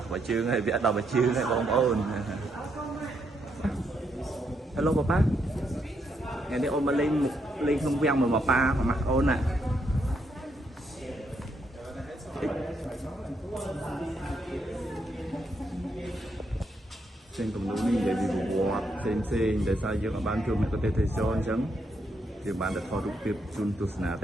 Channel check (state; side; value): normal; both; correlation 0.77